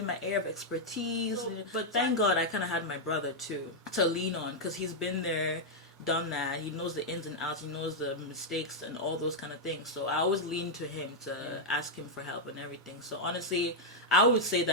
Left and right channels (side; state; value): both; normal; correlation -0.03